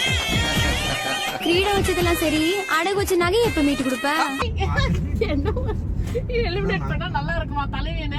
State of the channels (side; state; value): both; identical; correlation 1.00